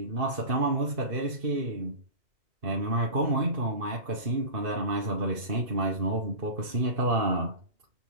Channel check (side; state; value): left; late; 2.6 ms